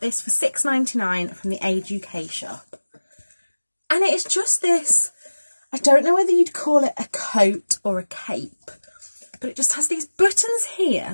for £6.99 from the Age UK shop. And it is just this, I don't know whether you'd call it a coat or a cape, but it just has these buttons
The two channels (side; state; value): both; inverted; correlation -1.00